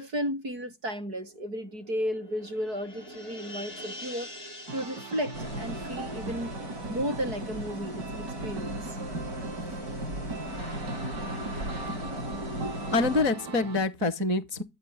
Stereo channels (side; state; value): left; late; 4.6 ms